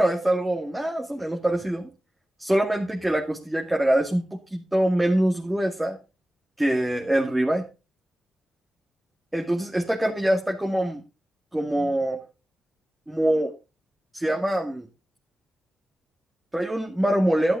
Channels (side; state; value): both; normal; correlation 0.96